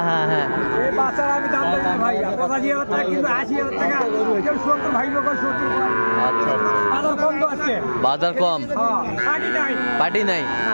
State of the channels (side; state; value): both; inverted; correlation -1.00